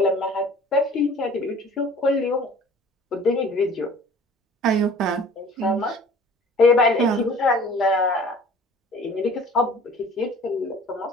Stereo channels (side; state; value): both; normal; correlation 0.48